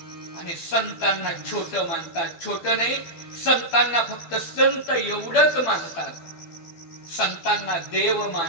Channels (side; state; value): right; late; 12 ms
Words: आणि संतांना छोट मानतात. छोट नाही, संतांना फक्त संत एवढंच मानतात. संतांना देव